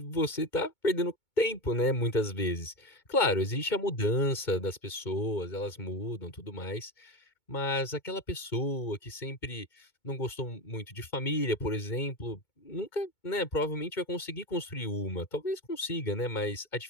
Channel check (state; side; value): late; right; 2.2 ms